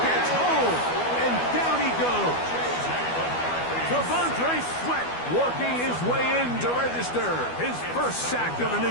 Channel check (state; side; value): late; right; 12 ms